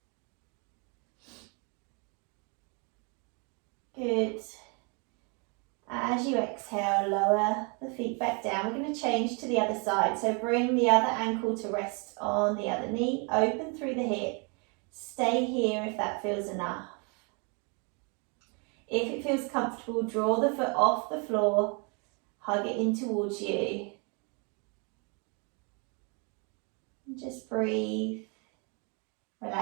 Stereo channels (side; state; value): left; quieter; 34.2 dB